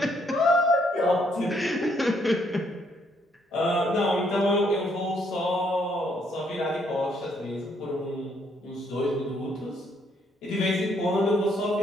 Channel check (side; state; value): both; normal; correlation 0.71